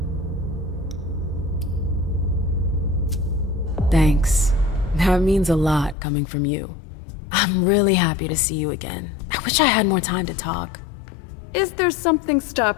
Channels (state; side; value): drops out; right; at 6.0 s